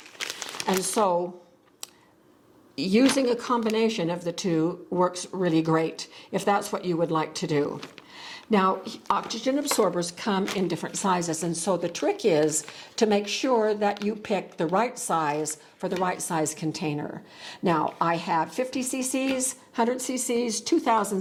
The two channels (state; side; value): identical; both; correlation 1.00